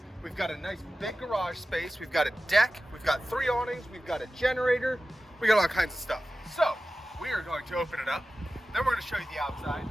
We've got a nice big garage space. We've got a deck. We've got 3 awnings. We've got a generator. We got all kinds of stuff. So we are going to open it up. Then we're going to show you the outside.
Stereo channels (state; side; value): normal; both; correlation 0.95